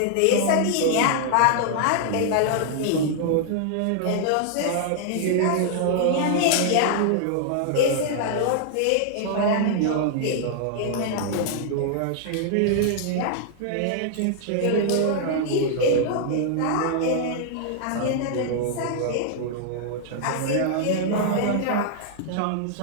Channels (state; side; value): different; both; correlation -0.01